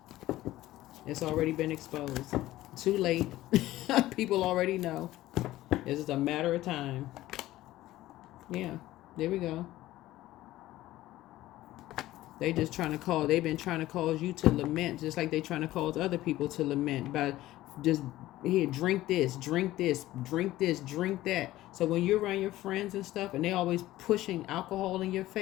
It's already been exposed. Too late. People already know. It's just a matter of time. Yeah, there we go. They just trying to call. They've been trying to cause you to lament, just like they trying to cause other people to lament by just, here, drink this, drink this, drink this, drink that. So when you're around your friends and stuff, and they always pushing alcohol in your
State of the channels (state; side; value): quieter; right; 15.8 dB